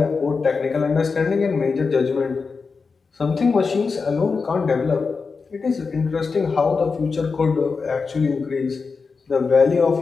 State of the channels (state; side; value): quieter; right; 4.8 dB